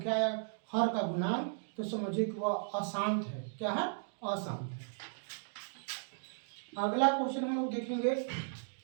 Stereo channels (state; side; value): silent; left; digital silence